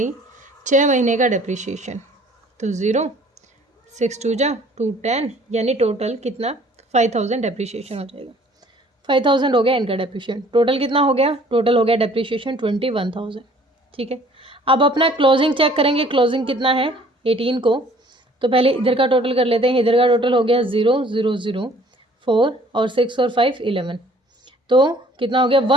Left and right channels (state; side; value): normal; both; correlation 0.55